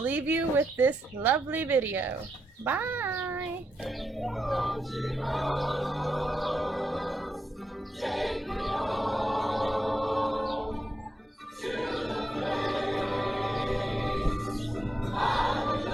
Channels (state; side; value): normal; both; correlation 0.84